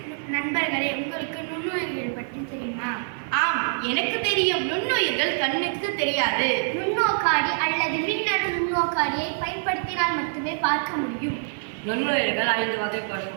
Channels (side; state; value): left; silent; 57 dB below the other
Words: நண்பர்களே, உங்களுக்கு நுண்ணுயிர்கள் பற்றி தெரியுமா? ஆம், எனக்கு தெரியும். நுண்ணுயிர்கள் கண்ணுக்கு தெரியாது. நுண்ணோக்காடி அல்லது மின்னணு நுண்ணோக்காடியை பயன்படுத்தினால் மட்டுமே பார்க்க முடியும். நுண்ணுயிர்கள் 5 வகைப்படும்.